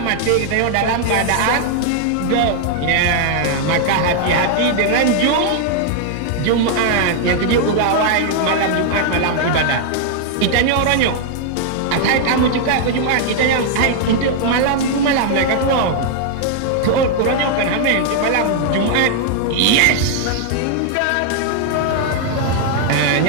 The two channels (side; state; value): both; different; correlation 0.00